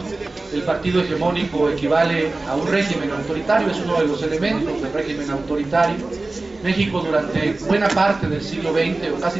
El partido hegemónico equivale a un régimen autoritario, es uno de los elementos del régimen autoritario. México durante buena parte del siglo XX, o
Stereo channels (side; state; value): left; quieter; 3.2 dB